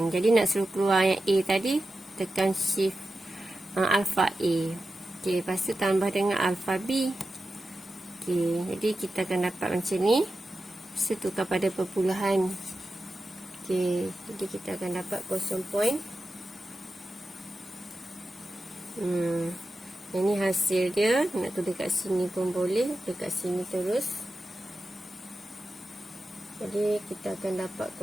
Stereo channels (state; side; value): normal; both; correlation 0.92